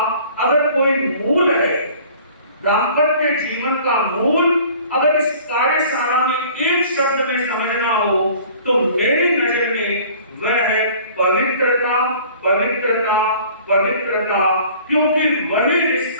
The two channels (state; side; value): inverted; both; correlation -0.49